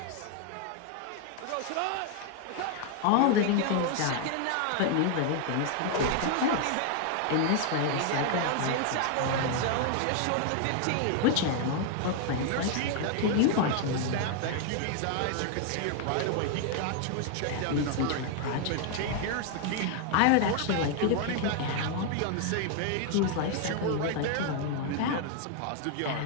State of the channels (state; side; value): different; both; correlation 0.00